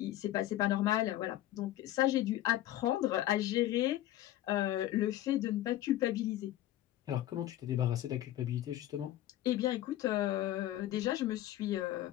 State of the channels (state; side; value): quieter; right; 14.1 dB